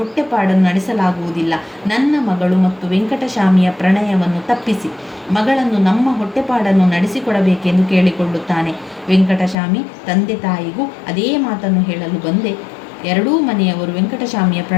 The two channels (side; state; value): right; drops out; at 9.6 s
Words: ನಡೆಸಲಾಗುವುದಿಲ್ಲ. ನನ್ನ ಮಗಳು ಮತ್ತು ವೆಂಕಟಸ್ವಾಮಿಯ ಪ್ರಣಯವನ್ನು ತಪ್ಪಿಸಿ ಮಗಳನ್ನು ನಮ್ಮ ಹೊಟ್ಟೆಪಾಡನ್ನು ನಡೆಸಿಕೊಡಬೇಕೆಂದು ಕೇಳಿಕೊಳ್ಳುತ್ತಾನೆ. ವೆಂಕಟಸ್ವಾಮಿ ತಂದೆ ತಾಯಿಗೂ ಅದೇ ಮಾತನ್ನು ಹೇಳಲು ಬಂದೆ. ಎರಡೂ ಮನೆಯವರು ವೆಂಕಟಸ್ವಾಮಿಯ